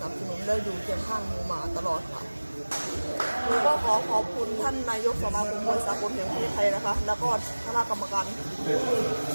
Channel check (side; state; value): both; inverted; correlation -1.00